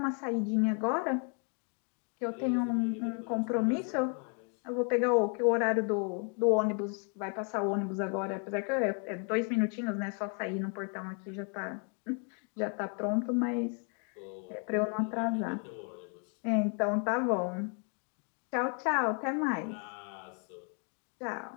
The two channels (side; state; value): right; quieter; 39.9 dB